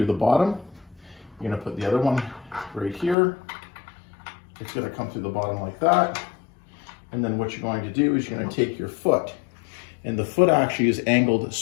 the bottom. You're gonna put the other one right here. It's gonna come through the bottom like that. And then what you're going to do is you're gonna take your foot, and the foot actually is angled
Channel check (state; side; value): drops out; right; at 3.2 s